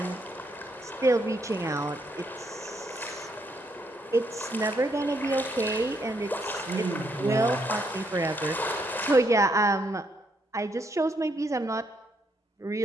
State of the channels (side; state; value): both; normal; correlation 0.74